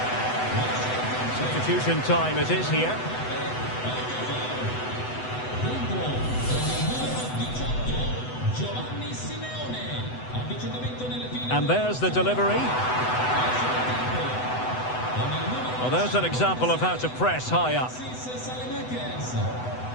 Substitution time it is here. And there's the delivery. Well, there's an example of how to press high up.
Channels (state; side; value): late; right; 8.0 ms